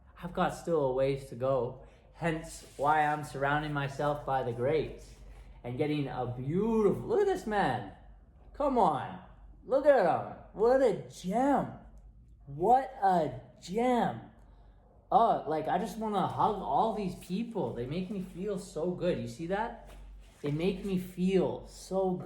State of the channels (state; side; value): identical; both; correlation 1.00